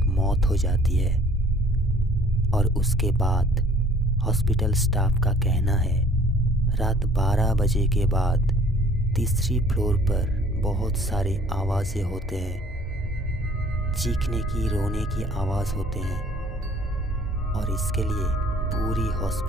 मौत हो जाती है और उसके बाद हॉस्पिटल स्टाफ का कहना है रात 12 बजे के बाद तीसरी फ्लोर पर बहुत सारे आवाज़ें होते हैं, चीखने की, रोने की आवाज़ होते हैं और इसके लिए पूरी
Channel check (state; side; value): normal; both; correlation 0.55